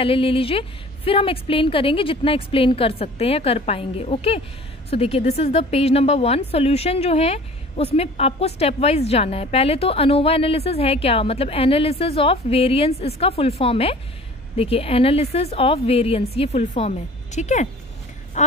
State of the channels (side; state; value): both; normal; correlation 0.46